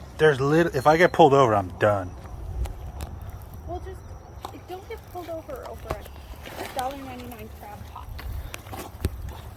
If I get pulled over, I'm done. Well, just don't get pulled over a $1.99 crab pot.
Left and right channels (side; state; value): both; identical; correlation 1.00